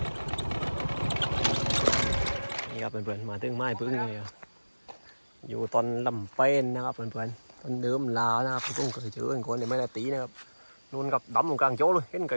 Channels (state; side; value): inverted; both; correlation -1.00